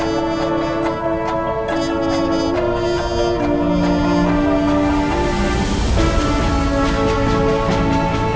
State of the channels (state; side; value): identical; both; correlation 1.00